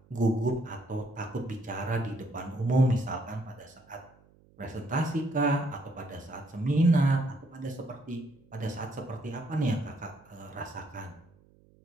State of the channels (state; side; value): noise; right; hum, 29 dB below the sound